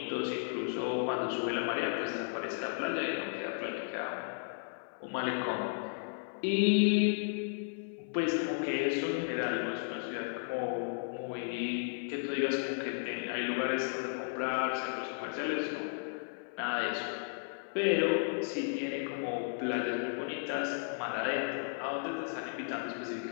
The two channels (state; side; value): silent; right; 55 dB below the other